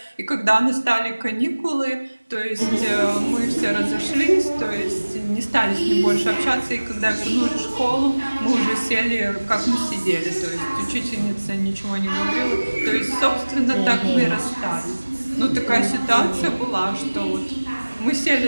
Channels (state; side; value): inverted; both; correlation -1.00